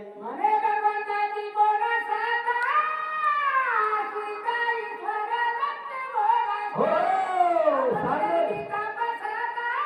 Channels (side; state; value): both; identical; correlation 1.00